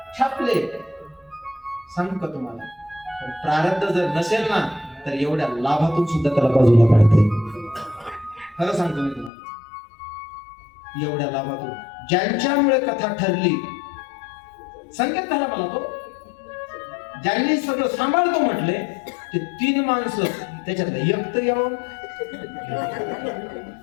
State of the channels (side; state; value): right; drops out; at 9.3 s